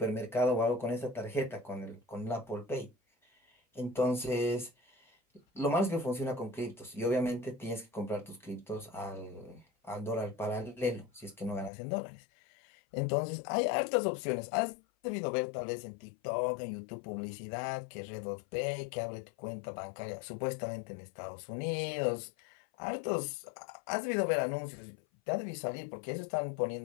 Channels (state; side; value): drops out; right; at 11.7 s